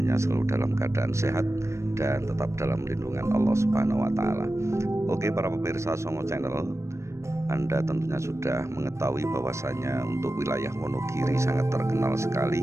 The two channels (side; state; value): left; late; 0.14 ms